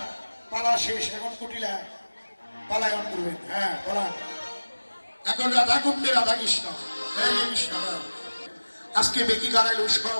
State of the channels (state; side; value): inverted; both; correlation -1.00